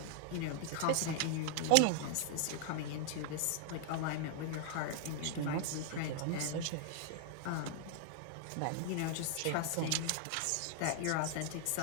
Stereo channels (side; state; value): both; different; correlation 0.00